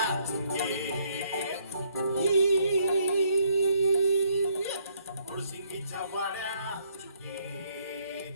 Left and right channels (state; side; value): inverted; both; correlation -0.68